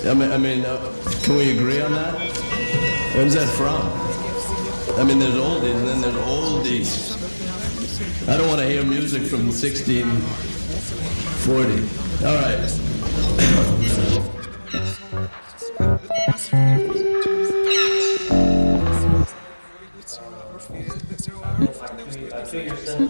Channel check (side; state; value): both; inverted; correlation -1.00